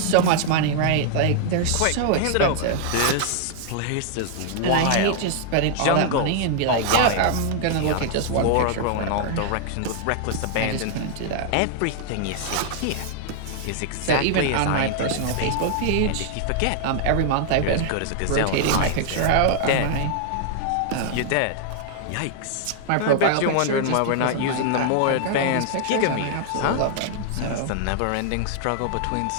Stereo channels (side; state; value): both; different; correlation -0.01